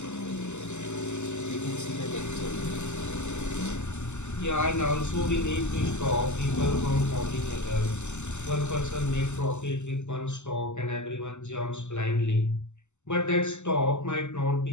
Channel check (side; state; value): right; late; 0.83 ms